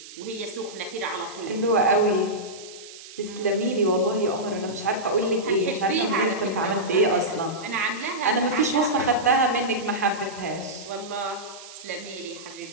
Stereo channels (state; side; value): noise; right; hiss, 16 dB below the sound